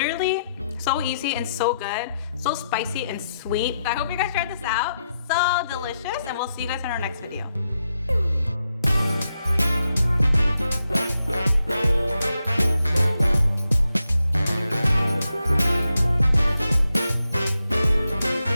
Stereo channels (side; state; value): both; inverted; correlation -0.84